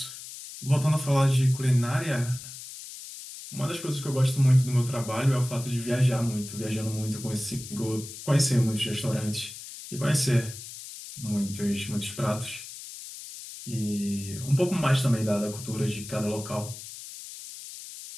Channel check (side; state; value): left; noise; hiss, 12 dB below the sound